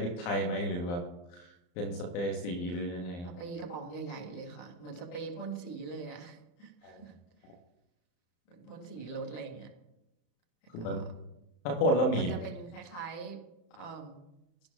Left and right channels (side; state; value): right; late; 34 ms